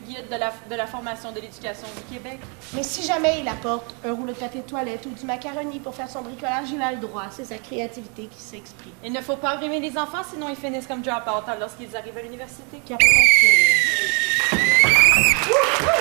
guide de la formation de l'éducation du Québec. Mais si jamais il apporte un rouleau de papier de toilette ou du macaroni pour faire son bricolage, il a le droit. C'est sa créativité qui s'exprime. Il ne faut pas brimer les enfants, sinon ils finissent comme drop-out lorsqu'ils arrivent à l'université.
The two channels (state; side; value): quieter; left; 35.8 dB